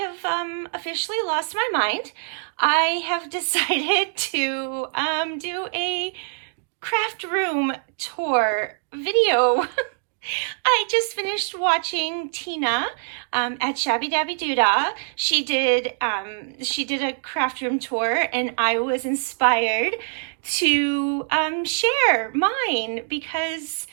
officially lost my mind. I have decided to do a craft room tour video. I just finished watching Tina at Shabby Dabby Doodah. She did a craft room tour, and I was inspired to share mine because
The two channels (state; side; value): silent; left; digital silence